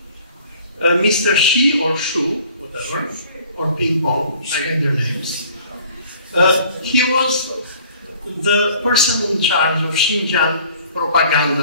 Mr. Shi or Shu, whatever, or Ping Pong, I get their names. He was the person in charge of Xinjiang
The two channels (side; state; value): both; inverted; correlation -0.52